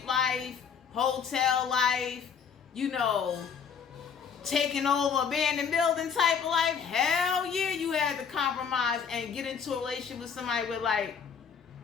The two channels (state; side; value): quieter; right; 6.8 dB